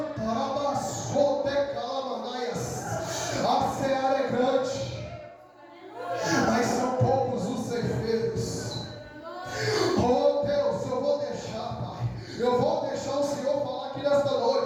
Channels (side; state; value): both; identical; correlation 1.00